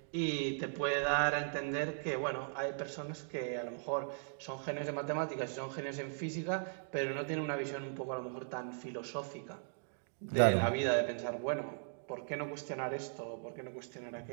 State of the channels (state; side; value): silent; left; digital silence